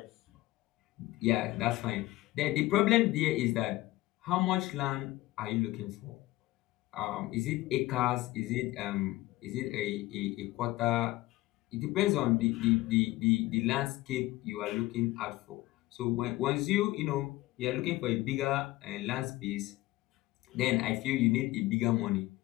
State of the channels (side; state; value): right; quieter; 18.1 dB